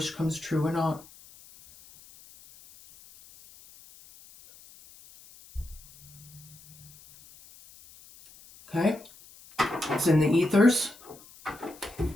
comes true or not. Okay? It's in the ethers.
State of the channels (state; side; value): noise; left; hiss, 23 dB below the sound